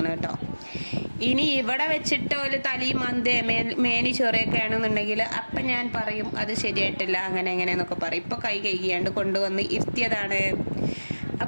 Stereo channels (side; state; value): both; inverted; correlation -1.00